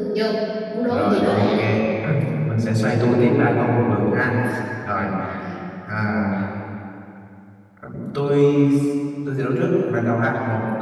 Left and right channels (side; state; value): both; identical; correlation 1.00